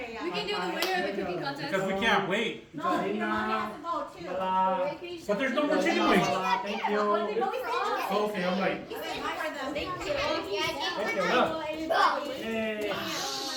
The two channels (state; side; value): identical; both; correlation 1.00